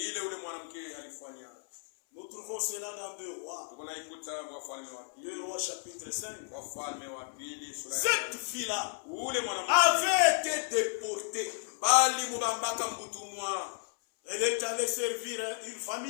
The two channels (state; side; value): silent; right; 56 dB below the other